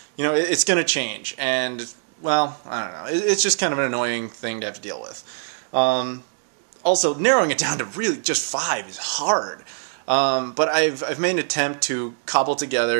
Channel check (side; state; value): left; silent; 64 dB below the other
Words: You know, it's going to change, and, well, I don't know. It's just kind of an annoying thing to have to deal with. Also, narrowing it down to really just 5 is hard. But I've made an attempt to cobble